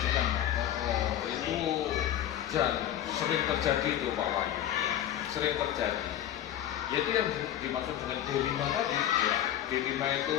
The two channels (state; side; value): quieter; right; 11.3 dB